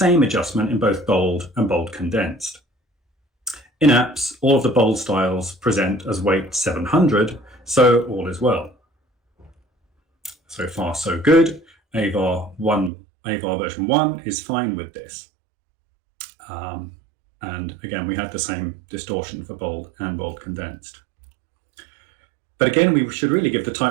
adjustment in both bold and bold condensed. In apps, all of the bold styles present as weight 700, so all is well. So far, so good. Avar version 1 is fine with this. And again, we had the same distortion for bold and bold condensed. But again, we should really give the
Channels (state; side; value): drops out; left; at 12.9 s